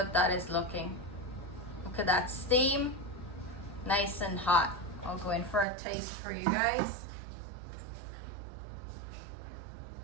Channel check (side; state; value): left; drops out; at 5.7 s